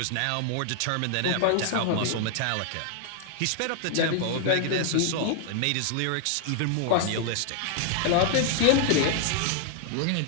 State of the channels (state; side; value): different; both; correlation 0.00